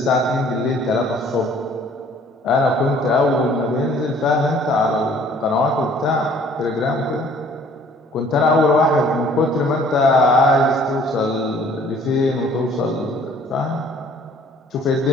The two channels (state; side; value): normal; both; correlation 0.56